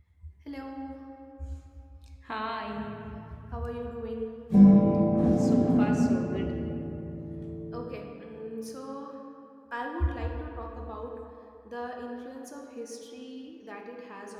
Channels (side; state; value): both; identical; correlation 1.00